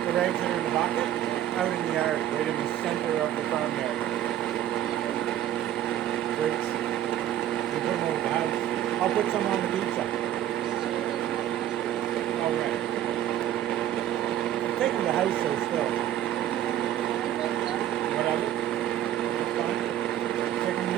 The rags that are in the bucket, out in the yard, right in the center of the farmyard. Great. You put them over the house. I'll put some on the pizza. All right. Take them to the house so still. Whatever. That's fine. Take them to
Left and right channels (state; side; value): quieter; left; 11.8 dB